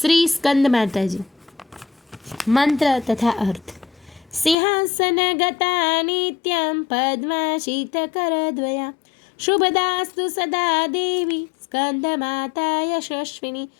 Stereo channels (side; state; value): right; drops out; at 4.5 s